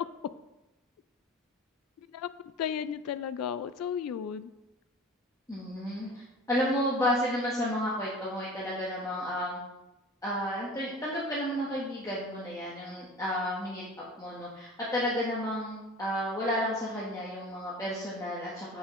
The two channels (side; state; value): both; normal; correlation 0.39